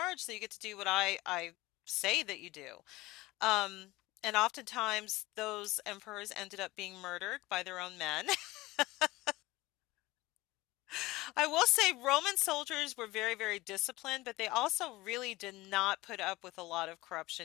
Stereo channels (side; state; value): right; quieter; 19.7 dB